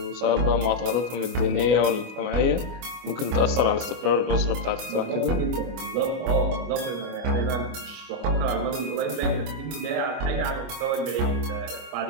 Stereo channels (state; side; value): late; left; 25 ms